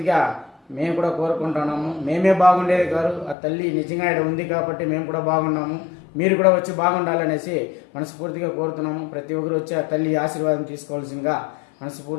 మేము కూడా కోరుకుంటున్నాము. మేమే బాగుండేది కాదు, ఆ తల్లి నిజంగా ఇక్కడ ఉంది కాబట్టి మేము కూడా బాగున్నాము. మీరు కూడా వచ్చి బాగుండాలనేసి మనస్ఫూర్తిగా కోరుతున్నాము. ప్రతి ఒక్కరు వచ్చి ఆ తల్లి ఆశీర్వాదం తీసుకోవాల్సిందిగా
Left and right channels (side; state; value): right; drops out; at 3.4 s